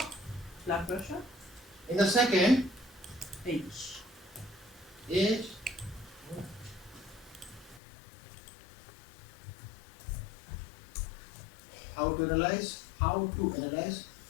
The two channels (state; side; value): drops out; right; at 7.8 s